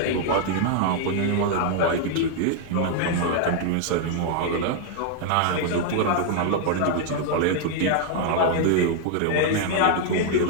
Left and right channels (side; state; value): both; different; correlation 0.00